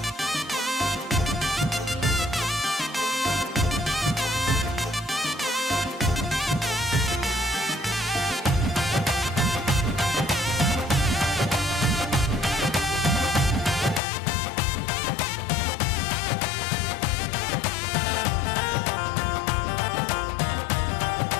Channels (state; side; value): drops out; right; at 14.0 s